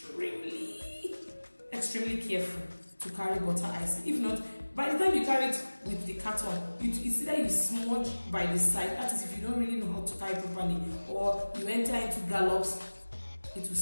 extremely careful to carry butter icing. If not, by the time you carry it with the carton, it's either you smudge by the side, that is if you don't really know how to carry properly, or you enter into gallops, it will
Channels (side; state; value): both; inverted; correlation -1.00